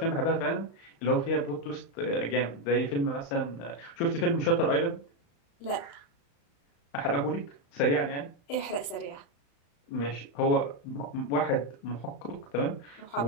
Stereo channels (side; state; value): right; late; 35 ms